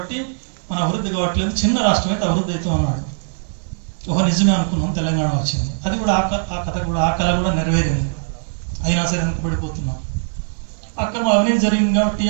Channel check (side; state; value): left; silent; digital silence